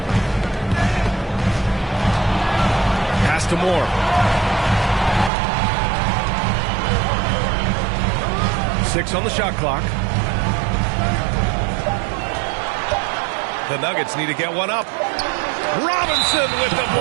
Pass to Moore. Six on the shot clock. The Nuggets need to get one up. Robinson with the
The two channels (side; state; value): left; drops out; at 5.3 s